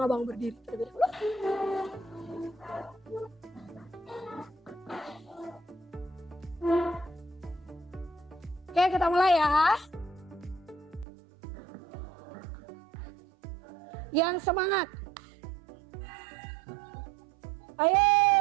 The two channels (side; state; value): left; drops out; at 11.1 s